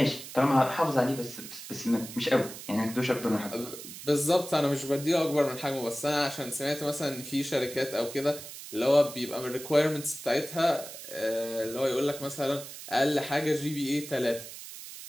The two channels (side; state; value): right; noise; hiss, 12 dB below the sound